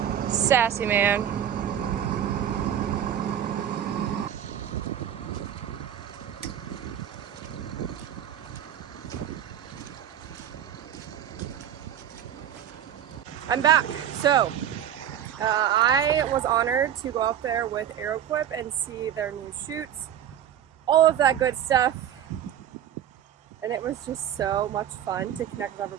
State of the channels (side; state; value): left; quieter; 10.0 dB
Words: Sassy man. I'm back. So, I was honored to go up there with AeroQuip and see their new shoots, all of that good stuff. And it was just so much fun to connect with